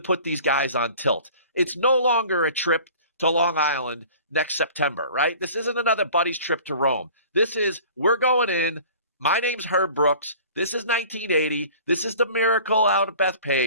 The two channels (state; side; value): inverted; both; correlation -0.46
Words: these guys on tilt. It's no longer a trip to Long Island next September, right? This isn't another buddy's trip to Rome. This is, we're going in. My name's Herb Brooks. This is 1980. This is the miracle out of